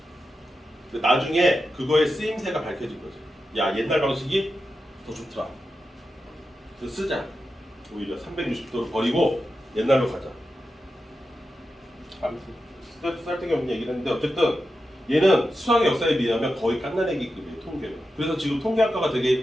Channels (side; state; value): both; normal; correlation 0.90